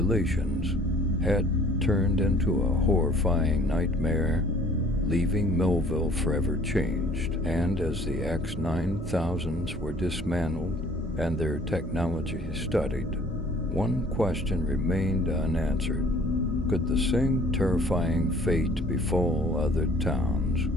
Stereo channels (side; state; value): both; normal; correlation 0.54